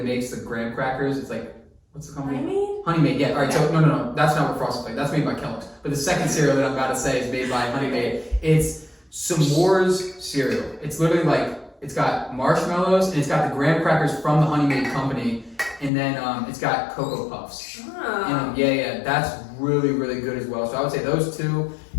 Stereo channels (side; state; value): right; drops out; at 15.9 s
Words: makes the graham crackers. It's like, what's the company? Honey Maid, yeah. All right, so no, that's not what Frosted Flakes. That's made by Kellogg's. But the second cereal that I'm about to say is made by Honey Maid. It's s'mores cereal. It's literally like, it's got marshmallows and it's got the graham crackers from the Honey Maid company, and then it's got Cocoa Puffs. Ah. Yeah, that's really, really good as well. So I would say those 2,